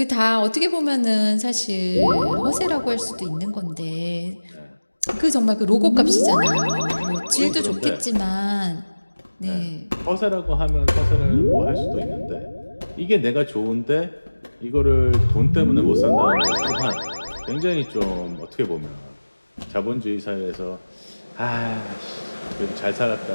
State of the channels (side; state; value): both; inverted; correlation -1.00